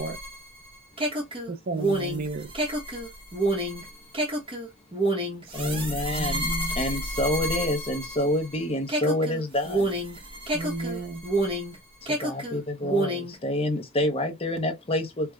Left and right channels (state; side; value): normal; both; correlation 0.41